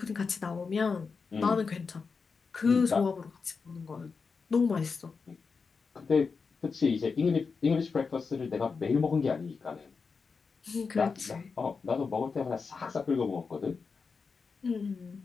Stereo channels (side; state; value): right; quieter; 5.0 dB